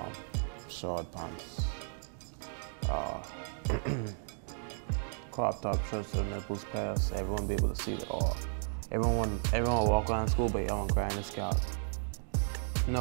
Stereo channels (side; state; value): left; silent; digital silence